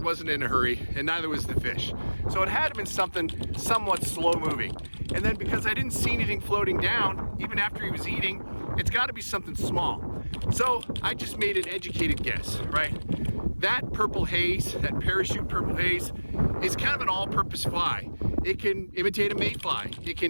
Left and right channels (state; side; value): inverted; both; correlation -1.00